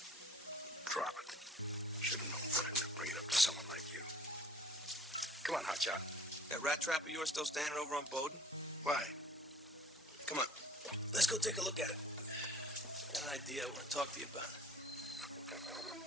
Drop it. Should have known better than to bring it up to someone like you. Come on, hotshot. That rat trap of yours still standing over on Bowden? Why? Come on. Let's go take a look at it. Got an idea I want to talk to you about.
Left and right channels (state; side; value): normal; both; correlation 0.53